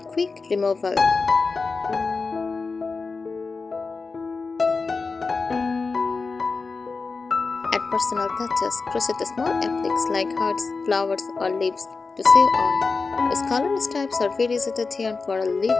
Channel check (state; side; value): quieter; right; 4.3 dB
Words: removal. Add personal touches. Crochet small appliques like hearts, flowers, or leaves to sew on. Use color stripes or variegated yarn for a